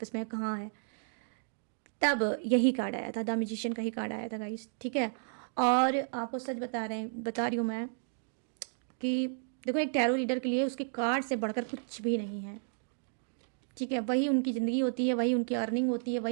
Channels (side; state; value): left; silent; digital silence